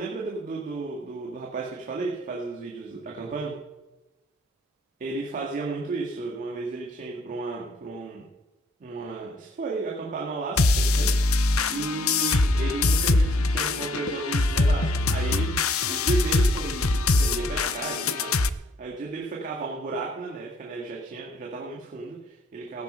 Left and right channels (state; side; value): normal; both; correlation 0.65